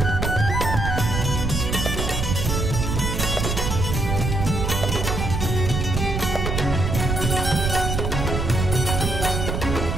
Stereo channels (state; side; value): noise; right; rumble, 1 dB below the sound